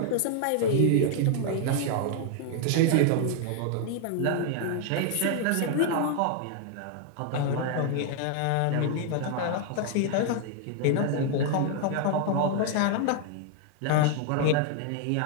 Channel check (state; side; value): different; both; correlation 0.00